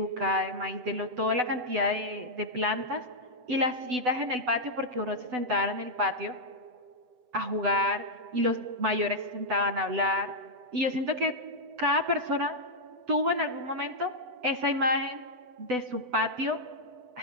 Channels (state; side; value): late; left; 8.0 ms